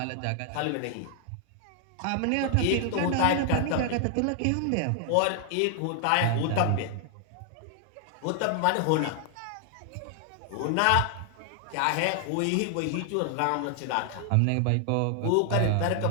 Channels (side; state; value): both; different; correlation 0.00